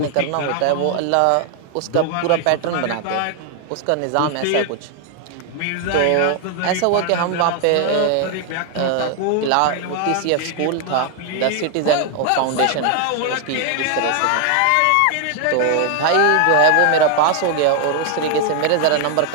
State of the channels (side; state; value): both; different; correlation 0.00